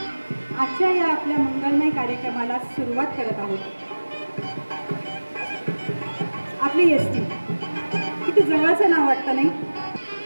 आजच्या या आपल्या मंगलमय कार्यक्रमाला सुरुवात करत आहोत। आपली एसटी किती जवळचं नाव वाटतं नाही?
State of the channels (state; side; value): inverted; both; correlation -1.00